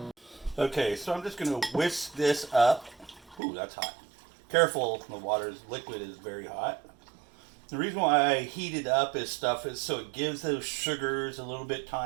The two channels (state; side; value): drops out; left; at 3.4 s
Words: Okay, so I'm just going to whisk this up. Ooh, that's hot. Careful, the liquid is very hot. The reason why I heat it up is so it gives those sugars a little bit